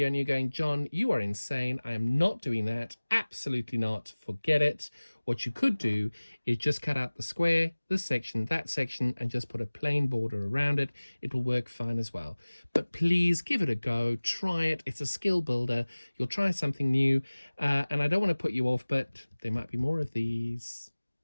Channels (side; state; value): both; inverted; correlation -1.00